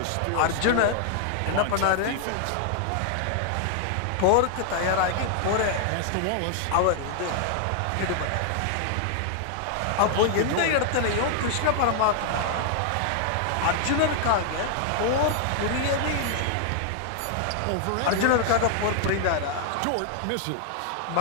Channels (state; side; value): different; both; correlation 0.00